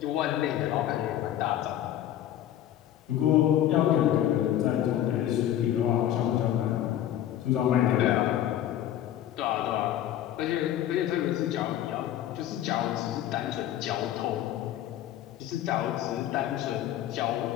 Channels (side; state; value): right; quieter; 11.8 dB